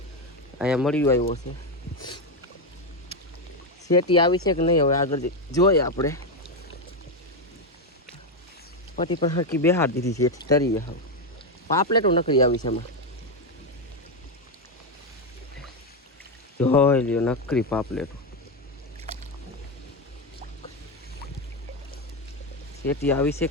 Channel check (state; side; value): normal; both; correlation 0.08